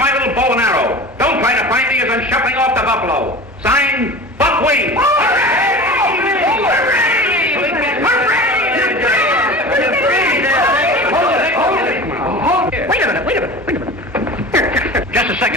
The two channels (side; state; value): both; normal; correlation 0.35